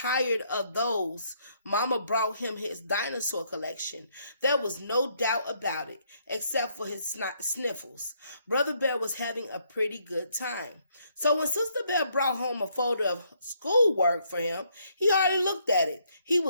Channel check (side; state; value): both; inverted; correlation -0.71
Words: of those, Mama brought him his dinosaur collection. There was no doubt about it, except for his sniffles. Brother Bear was having a pretty good time. So when Sister Bear brought home a folder of schoolwork for him, he hardly looked at it. He